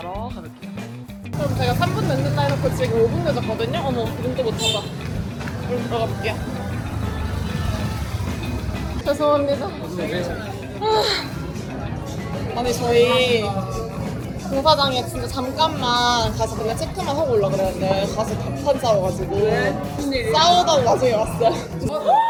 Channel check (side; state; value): both; identical; correlation 1.00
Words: 가볼게요. 그럼 제가 3분 늦는다 해놓고 지금 5분 늦었거든요? 어머, 눈도 못 찾아. 그럼 들어가 볼게요. 죄송합니다. 아니, 저희 공사장에 진짜 잠깐만 가서 그냥 체크만 하고 올라 그랬는데 가서 답판 싸워가지고 싸우다가 나중에 왔어요.